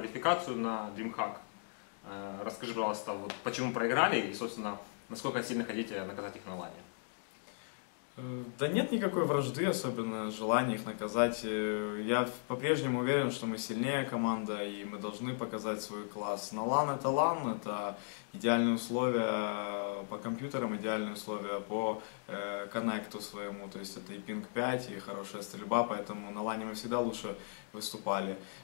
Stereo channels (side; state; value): right; silent; digital silence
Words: на DreamHack. Расскажи, пожалуйста, вот почему проиграли и, собственно, насколько сильно хотите наказать их на лане? Да нет никакой вражды, особенно желания их наказать. Я по-прежнему уверен, что мы сильнее команда и мы должны показать свой класс. На LAN это идеальные условия по компьютерам, идеальные условия по коннекту своему, то есть это и пинг 5, и хорошая стрельба, поэтому на LAN мы всегда лучше выступали,